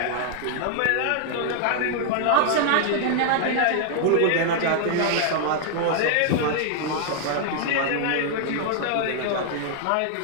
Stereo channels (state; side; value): different; both; correlation 0.00